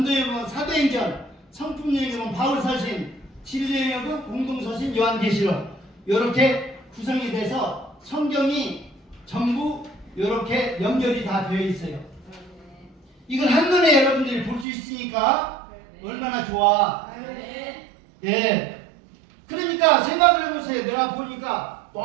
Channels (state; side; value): drops out; left; at 14.7 s